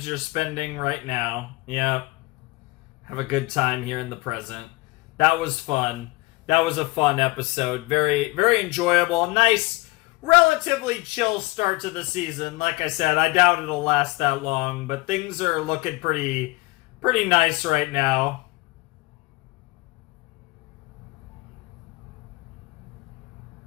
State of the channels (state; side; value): quieter; right; 23.3 dB